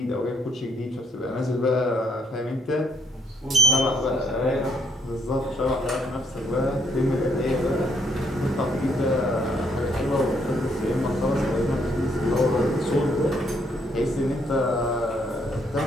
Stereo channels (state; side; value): normal; both; correlation 0.70